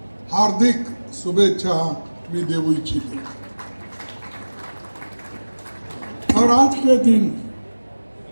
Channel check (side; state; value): both; inverted; correlation -1.00